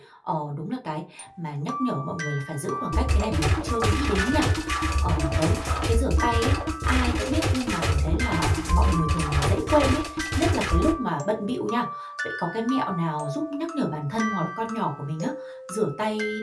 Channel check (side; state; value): both; identical; correlation 1.00